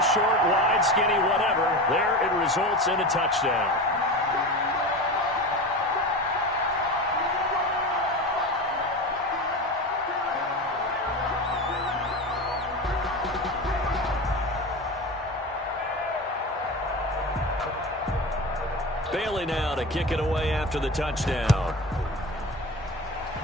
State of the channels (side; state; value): both; normal; correlation 0.27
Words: short, wide, skinny, whatever. There it results in a touchdown. Bailey now to kick it away after the touchdown.